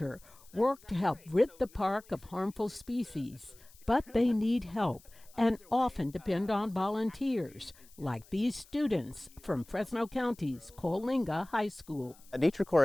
work to help rid the park of harmful species, but they need help and often depend on volunteers, like these students from Fresno County's Coalinga High School. Nature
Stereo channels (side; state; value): left; noise; hiss, 25 dB below the sound